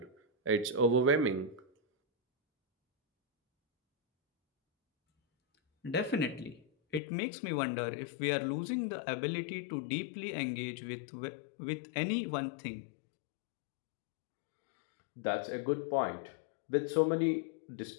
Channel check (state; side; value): drops out; right; at 7.0 s